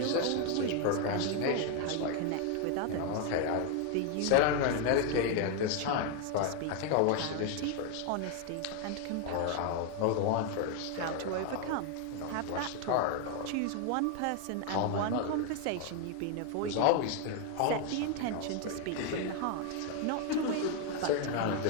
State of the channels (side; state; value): both; different; correlation 0.01